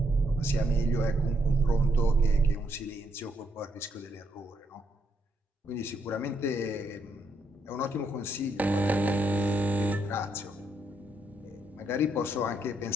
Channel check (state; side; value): normal; both; correlation 0.76